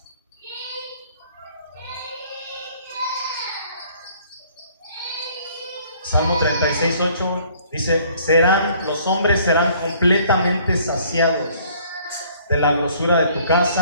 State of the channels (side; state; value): both; inverted; correlation -0.59